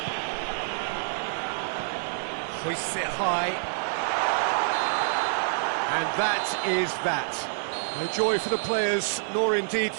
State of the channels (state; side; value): silent; left; digital silence